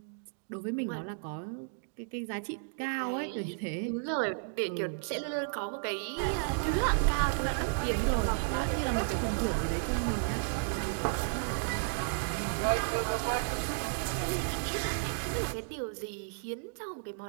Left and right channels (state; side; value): silent; left; digital silence